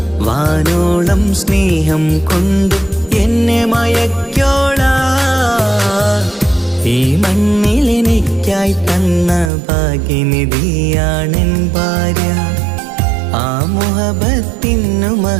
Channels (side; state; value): left; drops out; at 9.5 s